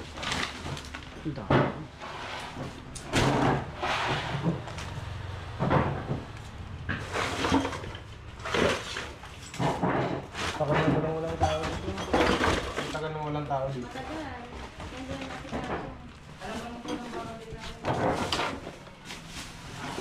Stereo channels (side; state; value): both; identical; correlation 1.00